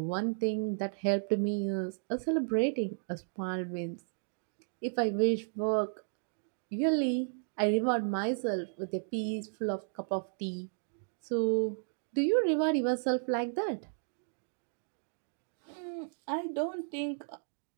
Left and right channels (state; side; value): silent; left; digital silence